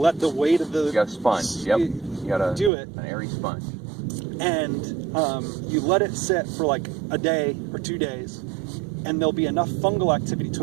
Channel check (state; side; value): drops out; left; at 2.7 s